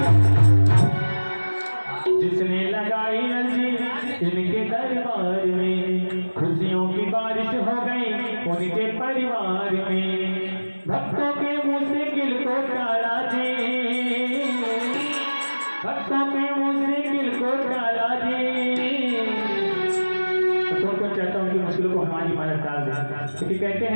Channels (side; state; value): both; inverted; correlation -1.00